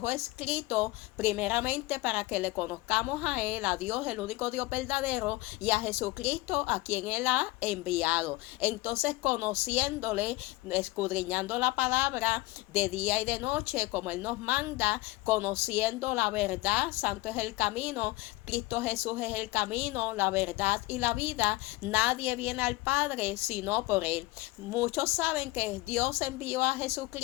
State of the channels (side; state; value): right; quieter; 20.6 dB